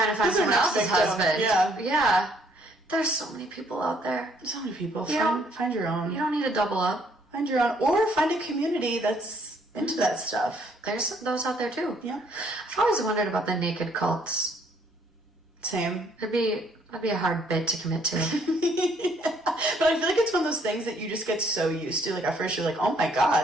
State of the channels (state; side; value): normal; both; correlation 0.65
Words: to find someone else's husband. Yeah. Yeah. There's so many people out there. So many people. Find your own. You don't need to double up. Find your own. Or find a community that's into that stuff. There's those out there too. Yeah. I've always wondered about the naked cults. Same. That'd be a hard bit to commit to. Yeah. But I feel like it's one of those things that you just get so used to. Like at first you're like, oh my